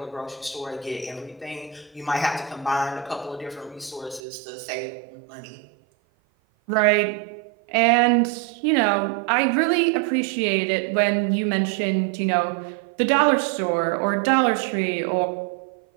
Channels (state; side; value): drops out; left; at 4.2 s